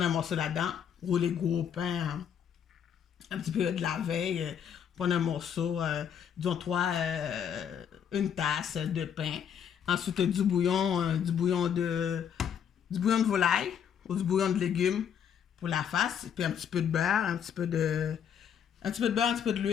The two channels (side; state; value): right; quieter; 8.4 dB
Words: un morceau là-dedans, rouler gros pain, un petit peu de la veille, prendre un morceau, disons une tasse de pain. Ensuite, du bouillon de volaille ou du bouillon de légumes pour la face, puis un petit peu de beurre, un petit peu de